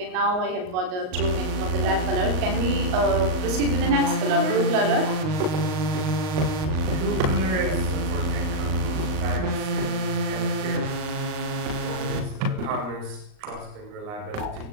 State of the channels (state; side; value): late; left; 38 ms